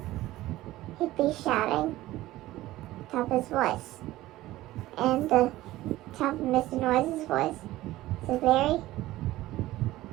he'd be shouting top of his voice. And the top of Mr. Noisy's voice is a very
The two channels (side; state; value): left; quieter; 16.5 dB